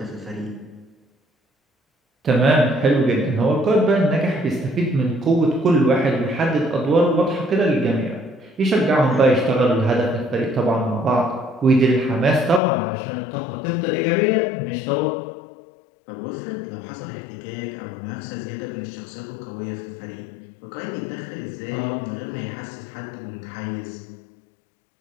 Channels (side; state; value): right; drops out; at 12.6 s